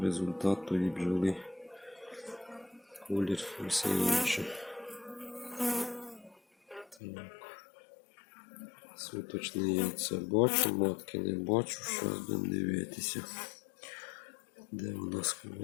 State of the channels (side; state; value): right; drops out; at 7.0 s